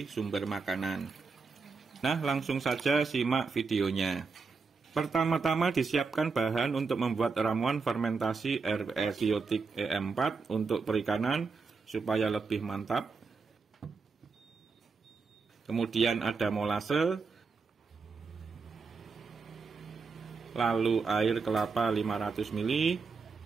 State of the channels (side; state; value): left; quieter; 4.7 dB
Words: sumber makanan. Nah, langsung saja simak videonya. Pertama-tama disiapkan bahan untuk membuat ramuan fermentasi RWS biotik EM4 untuk perikanan supaya lebih mantap. Kemudian ada molase, lalu air kelapa 500 ml,